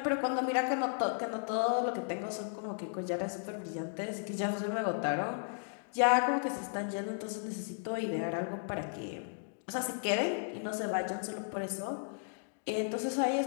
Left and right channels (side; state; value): right; silent; digital silence